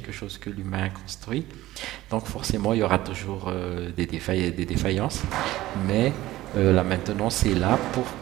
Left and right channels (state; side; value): quieter; left; 16.2 dB